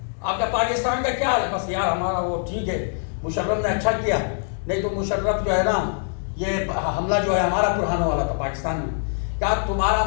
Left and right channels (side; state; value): right; silent; digital silence